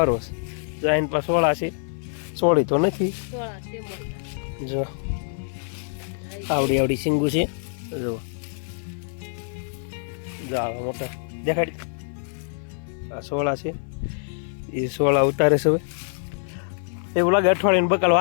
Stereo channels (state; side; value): silent; right; 57 dB below the other